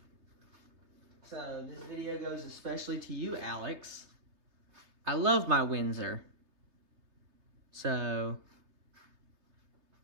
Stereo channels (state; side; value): late; left; 3.3 ms